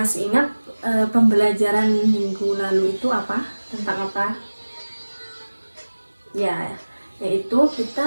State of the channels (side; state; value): both; inverted; correlation -1.00